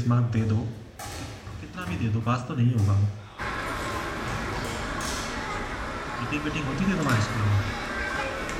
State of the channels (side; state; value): both; identical; correlation 1.00